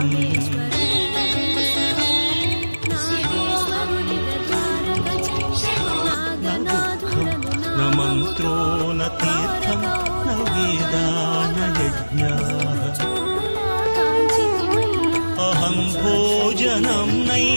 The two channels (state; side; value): inverted; both; correlation -1.00